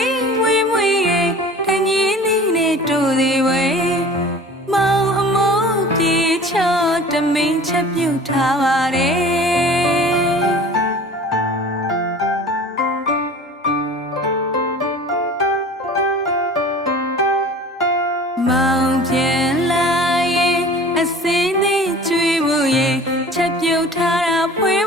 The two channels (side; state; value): both; normal; correlation 0.43